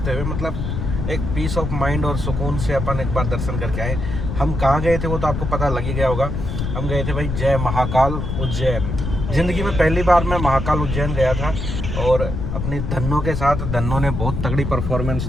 हुए मतलब एक पीस ऑफ माइंड और सुकून से अपन एक बार दर्शन करके आए। हम कहाँ गए थे वो तो आपको पता लग ही गया होगा। हम गए थे भाई जय महाकाल उज्जैन। ज़िंदगी में पहली बार मैं महाकाल उज्जैन गया था और अपनी धन्नों के साथ धन्नों ने बहुत तगड़ी परफॉर्मेंस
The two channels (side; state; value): left; noise; rumble, 3 dB below the sound